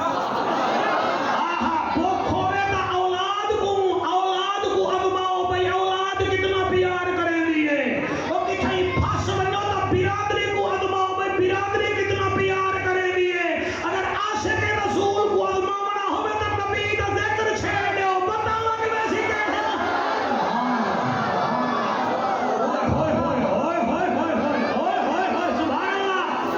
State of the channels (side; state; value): both; identical; correlation 1.00